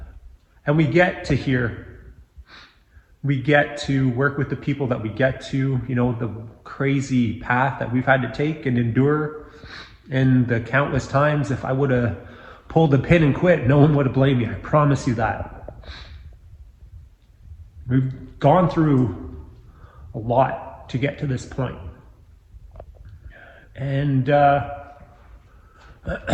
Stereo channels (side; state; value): both; identical; correlation 1.00